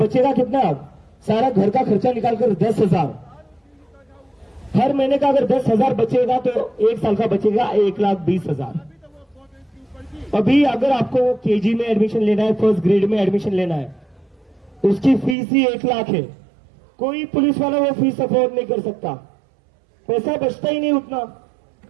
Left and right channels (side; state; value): left; drops out; at 15.4 s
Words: कितना? सारा घर का खर्चा निकालकर 10,000। हर महीने का अगर 10,000 बचेगा तो एक साल का बचेगा 1,20,000। अभी अगर आपको केजी में एडमिशन लेना है, फर्स्ट ग्रेड में एडमिशन लेना है, उसकी फीस ही 1 लाख है। कोई पुलिस वाला वो फीस अफोर्ड नहीं कर सकता, पैसा बचता ही नहीं उतना।